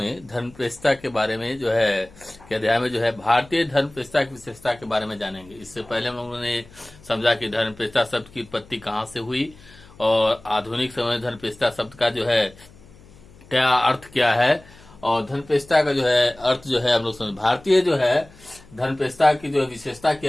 धर्मप्रतिष्ठा के बारे में जो है के अध्याय में जो है भारतीय धर्मप्रतिष्ठा की विशेषता के बारे में जानेंगे। इससे पहले हम लोगों ने समझा कि धर्मप्रतिष्ठा शब्द की उत्पत्ति कहाँ से हुई और आधुनिक समय में धर्मप्रतिष्ठा शब्द का जो है क्या अर्थ क्या है और धर्मप्रतिष्ठा का जो है अर्थ जो है हम लोग समझ। भारतीय जो है धर्मप्रतिष्ठा की जो विशेषता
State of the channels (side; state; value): left; noise; hum, 24 dB below the sound